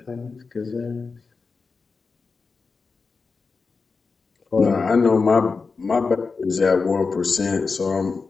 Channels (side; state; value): right; quieter; 4.6 dB